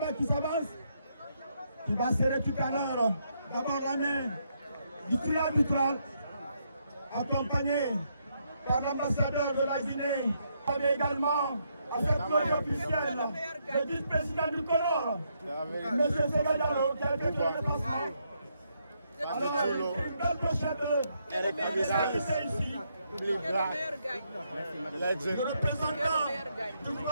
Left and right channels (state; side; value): inverted; both; correlation -0.77